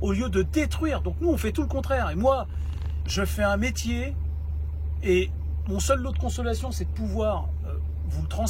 au lieu de détruire. Donc nous, on fait tout le contraire. Et moi, je fais un métier, et mon seul lot de consolation, c'est de pouvoir vous le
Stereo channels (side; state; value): both; identical; correlation 1.00